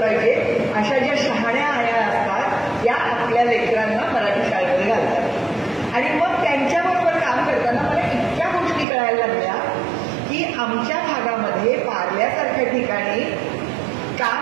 पाहिजे, अशा ज्या शहाण्या आया असतात त्या आपल्या लेकरांना मराठी शाळेमध्ये घालतात. आणि मग त्यांच्याबरोबर काम करताना मला इतक्या गोष्टी कळायला लागल्या की आमच्या भागामध्ये पार्ल्यासारख्या ठिकाणी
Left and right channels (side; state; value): left; drops out; at 8.8 s